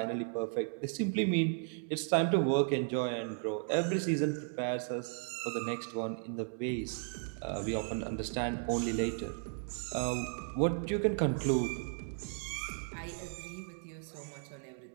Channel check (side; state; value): left; silent; 54 dB below the other